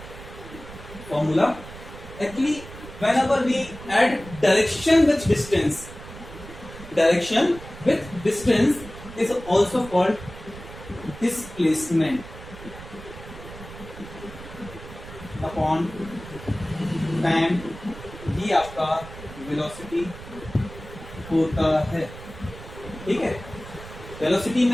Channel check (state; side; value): noise; right; rumble, 15 dB below the sound